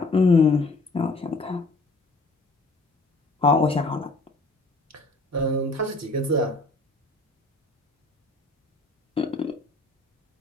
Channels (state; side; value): quieter; right; 3.1 dB